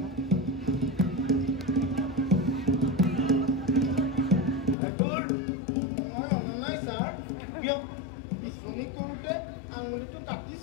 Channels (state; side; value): drops out; right; at 4.8 s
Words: তোৰ মই অনা নাই ছাৰ। কিয়? বিচনী কৰোঁতে আঙুলিটো